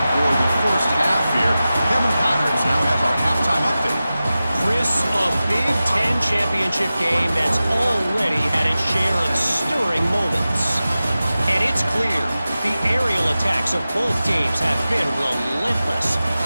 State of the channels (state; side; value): inverted; both; correlation -0.95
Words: for the first half here. Kevin Connors now has our halftime update. Chris, a Big Ten championship game that's already had its share of stirring moments. And it's clear, the aerial attacks of both teams have been relentless.